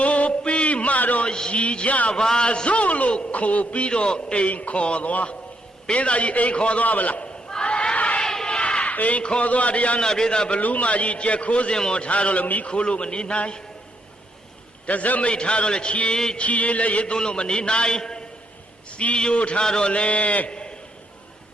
ိုပြီးမှတော့ရည်ကြပါစို့လို့ခိုးပြီးတော့အိမ်ခေါ်သွားပေးသားကြီးအိမ်ခေါ်သွားဗလားအိမ်ခေါ်သွားတရားနာပြေသာဘလူးမကြီးကြက်ခိုးစင်ပေါ်ထားတော့လည်းမိခိုးလို့မနေနိုင်တစက်မိတ်ထားတော့လည်းချီလည်းရေသွန်းလို့မနေနိုင်စီယိုထားတော့လည်း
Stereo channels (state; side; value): normal; both; correlation 0.76